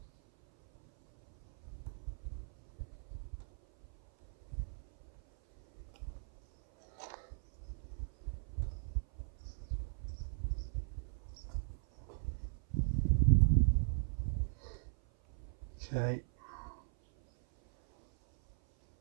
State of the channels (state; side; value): silent; left; 52 dB below the other